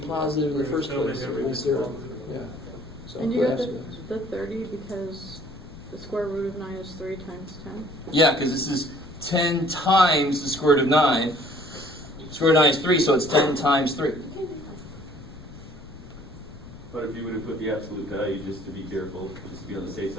in the first place. So we'll zero. Yeah. So And you put got absolute value. the 30 because the square root of 9 is 3 times 10. Yeah, because this is 10 times the square root of 9. Square root of 9 is 3, so it's 10 times 3. But if you would have put the absolute value, just to be careful, just to be on the safe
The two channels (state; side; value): noise; left; rumble, 17 dB below the sound